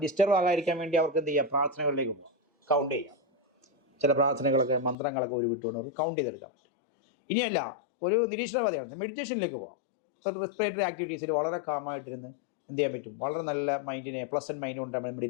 ഡിസ്റ്റർബ് ആകാതിരിക്കാൻ വേണ്ടി അവർക്ക് എന്ത് ചെയ്യാം, പ്രാർത്ഥനകളിലേക്ക് പോകാം, കൗണ്ട് ചെയ്യാം. ചില പ്രാർത്ഥനകളൊക്കെ മന്ത്രങ്ങളൊക്കെ വിട്ടുകൊണ്ട് അവർക്ക് കൗണ്ട് ചെയ്തെടുക്കാൻ പറ്റും. ഇനിയല്ല, ഒരു നിരീക്ഷണവാദിയാണ്, മെഡിറ്റേഷനിലേക്ക് പോകാം. റെസ്പിറേറ്ററി ആക്ടിവിറ്റീസിൽ വളരെ കാമായിട്ടിരുന്ന് എന്ത് ചെയ്യാൻ പറ്റും, വളരെ നല്ല മൈൻഡിനെ പ്ലസന്റ് മൈൻഡ് കൊണ്ട്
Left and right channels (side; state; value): right; drops out; at 5.0 s